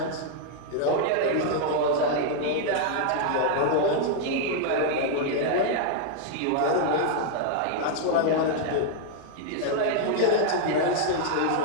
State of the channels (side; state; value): both; different; correlation -0.01